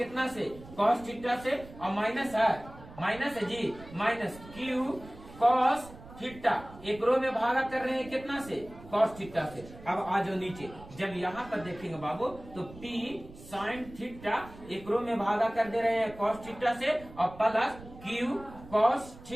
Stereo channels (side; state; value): right; noise; rumble, 18 dB below the sound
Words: से, कॉस थीटा से, और माइनस है जी, माइनस Q कॉस थीटा एकरो में भागा कर रहे हैं कितना से, कॉस थीटा से। अब आ जाओ नीचे, जब यहाँ पर देखेंगे बाबू तो P sin थीटा एकरो में भागा कर दे रहे हैं कॉस थीटा से, और प्लस Q कॉस